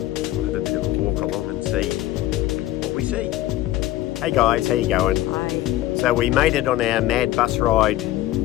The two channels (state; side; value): quieter; right; 15.0 dB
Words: We'll have a bit of a walk along and see what we see. Hey guys, how you going? Hi. So we made it on our mad bus ride